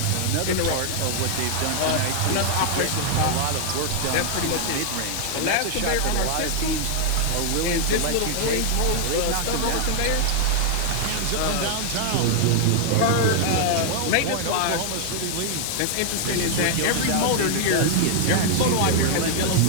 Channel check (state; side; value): different; both; correlation -0.01